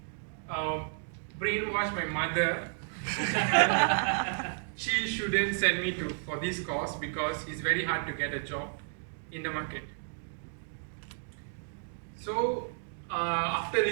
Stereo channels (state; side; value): silent; left; digital silence